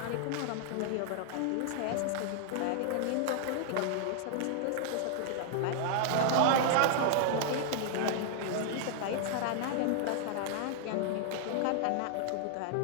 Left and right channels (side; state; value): both; different; correlation -0.01